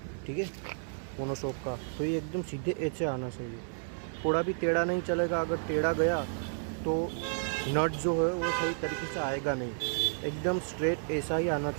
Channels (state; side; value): silent; left; 57 dB below the other